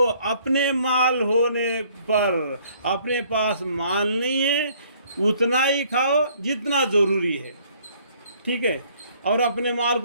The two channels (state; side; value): inverted; both; correlation -0.60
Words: اپنے مال ہونے پر، اپنے پاس مال نہیں ہے اتنا ہی کھاؤ جتنا ضروری ہے، ٹھیک ہے؟ اور اپنے مال